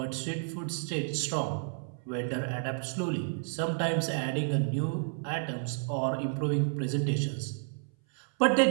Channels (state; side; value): silent; left; 57 dB below the other